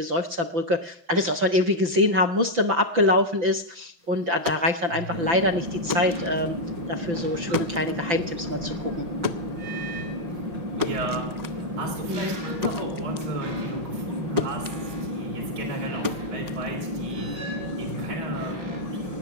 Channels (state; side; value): late; left; 5.9 ms